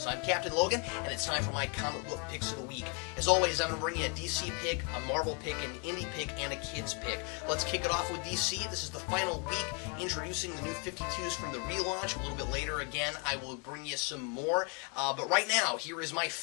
I'm Captain Logan, and it's time for my comic book picks of the week. As always, I'm going to bring you a DC pick, a Marvel pick, an Indy pick, and a Kids pick. Let's kick it off with DC. This is the final week, introducing the new 52s from the relaunch. A little bit later, again, I will bring you some more. But right now, here is my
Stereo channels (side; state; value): right; quieter; 35.4 dB